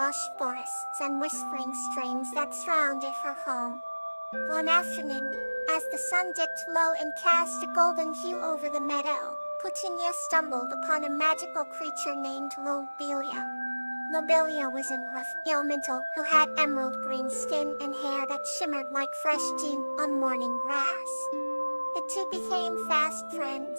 forests and whispering streams that surrounded her home. One afternoon, as the sun dipped low and cast a golden hue over the meadow, Titania stumbled upon a magical creature named Lobelia. Lobelia was a rough elemental who had emerald green skin and hair that shimmered like fresh dew on morning grass. The two became fast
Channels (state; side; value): inverted; both; correlation -1.00